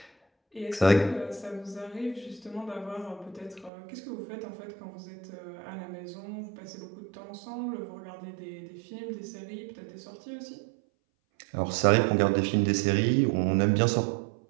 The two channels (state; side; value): drops out; left; at 3.7 s